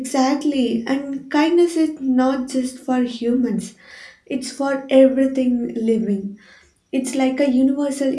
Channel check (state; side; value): identical; both; correlation 1.00